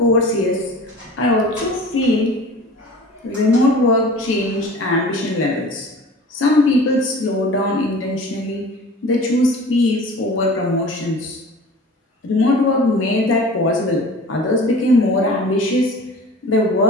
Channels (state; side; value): normal; both; correlation 0.41